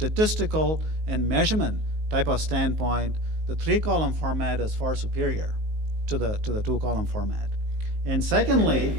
and measurement type of standpoint, the the 3-column format is far superior to the 2-column format. And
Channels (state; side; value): late; left; 19 ms